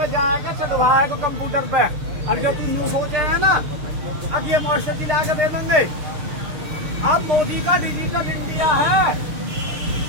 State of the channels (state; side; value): late; left; 6.6 ms